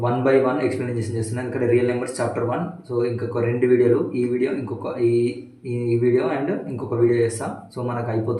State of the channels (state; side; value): identical; both; correlation 1.00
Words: 1 by 1 explanation చేస్తున్నాను ఇక్కడ real numbers chapter 1 so ఇంకొక రెండు వీడియోలు ఈ video ఇంకొక ఈ video and ఇంకొక video చేస్తాం సో మనకు